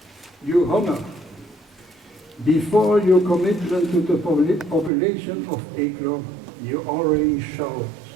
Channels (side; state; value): left; drops out; at 4.9 s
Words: you honor, before your commitment to the population of Eeklo, you already showed